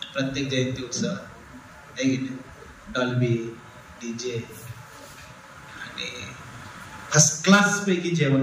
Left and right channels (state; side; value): identical; both; correlation 1.00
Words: प्रत्येक जयंती उत्सव आहे की नाही, डॉल्बी, डीजे आणि फर्स्ट क्लास पैकी